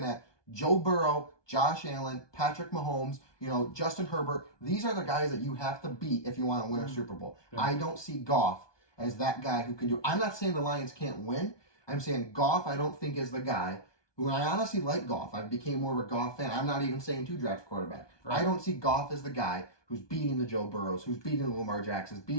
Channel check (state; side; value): late; right; 1.2 ms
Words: at Joe Burrow, Josh Allen, Patrick Mahomes, you know, Justin Herbert. These are the guys that you have to beat if you want to win a Super Bowl. Yeah. I don't see Goff as that guy who can do. I'm not saying the Lions can't win. I'm saying Goff, I don't think is the guy who I honestly like Goff. I became more of a Goff fan. I'm not even saying 2 draft quarterback. Right. I don't see Goff as the guy who's beating the Joe Burrows, who's beating the Lamar Jacksons,